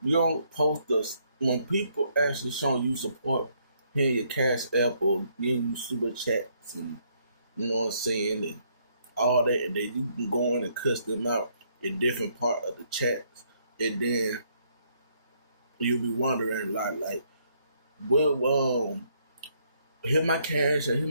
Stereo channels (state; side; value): inverted; both; correlation -0.71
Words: You don't post us when people actually showing you support, hitting your cash app or giving you super chats and you know what I'm saying, and all that, and then you can go in and cuss them out in different part of the chats, and then you'll be wondering like, well, hit my cash, and